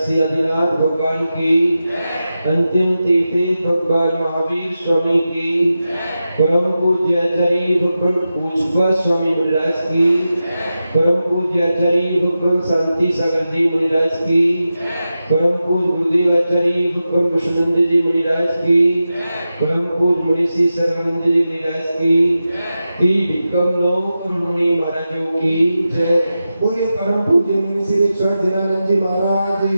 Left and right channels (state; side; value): inverted; both; correlation -0.92